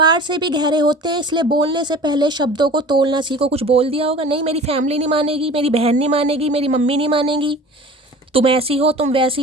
से भी गहरे होते हैं, इसलिए बोलने से पहले शब्दों को तोलना सीखो। कुछ बोल दिया होगा, नहीं मेरी फैमिली नहीं मानेगी, मेरी बहन नहीं मानेगी, मेरी मम्मी नहीं मानेगी, तुम ऐसी हो, तुम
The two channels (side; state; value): both; normal; correlation 0.41